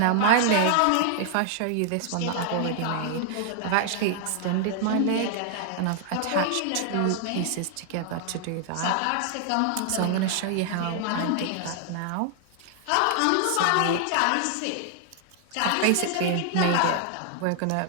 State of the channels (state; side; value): different; both; correlation 0.00